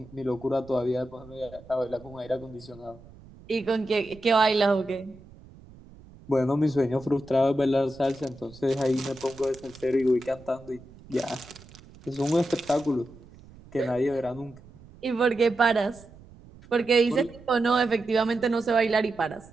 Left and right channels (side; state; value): right; noise; rumble, 22 dB below the sound